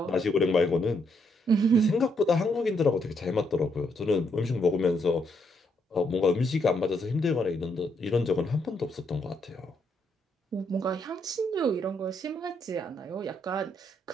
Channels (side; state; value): both; normal; correlation 0.75